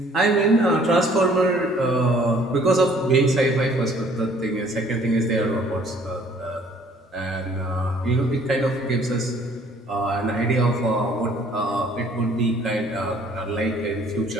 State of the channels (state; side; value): normal; both; correlation 0.58